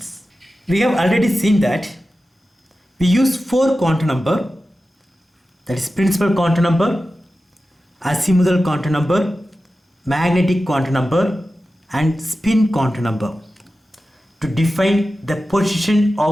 We have already seen that we use 4 quantum number, that is principal quantum number, azimuthal quantum number, magnetic quantum number and spin quantum number to define the position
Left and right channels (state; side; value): normal; both; correlation 0.94